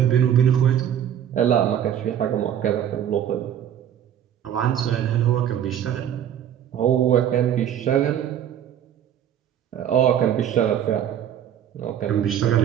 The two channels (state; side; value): quieter; left; 9.9 dB